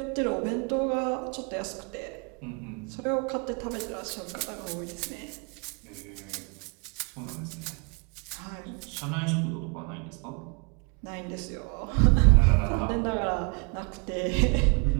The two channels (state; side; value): quieter; left; 33.5 dB